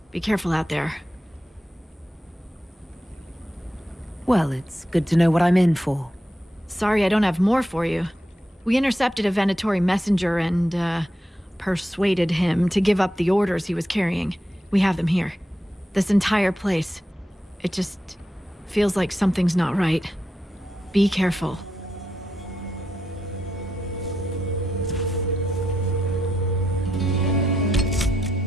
Be careful out there. Well, it's good to know what I'm in for. Sorry I don't have more for you. We intercepted a Venatori messenger and, persuaded him to give up the orders he was carrying. We have them here. This entire place. It just feels like something's not right. Be careful.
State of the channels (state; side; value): normal; both; correlation 0.85